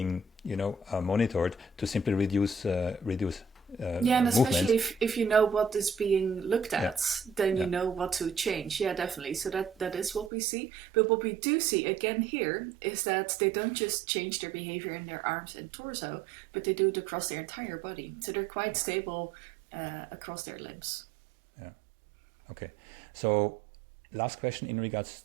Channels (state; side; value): drops out; left; at 10.3 s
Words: monitored, to simply reduce and especially if you know what is being looked at, then you know what to change. Yeah, definitely. So that is what we see. But what we do see again here is that they don't just change their behavior in their arms and torso, but they do it across their entire body. So they're quite stable across their limbs. Yeah. Okay. So last question in regards